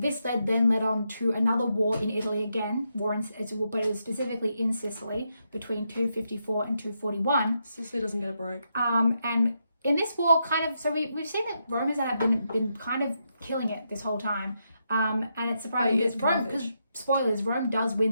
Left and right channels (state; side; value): inverted; both; correlation -0.82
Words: led on to another war in Italy again, but it was specifically in Sicily between 254 and 241. Sicily doesn't get a break. And in this war, we've seen that Romans have been kind of killing it this whole time. And it's surprising because spoilers, Rome does